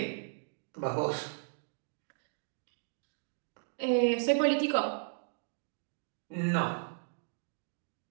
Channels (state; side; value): silent; left; digital silence